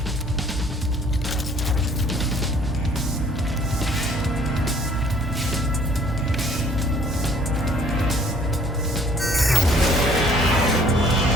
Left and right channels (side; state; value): both; normal; correlation 0.58